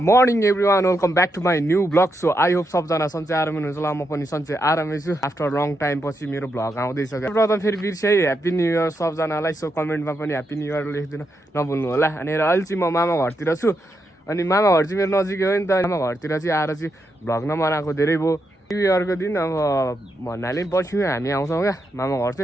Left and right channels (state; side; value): normal; both; correlation 0.83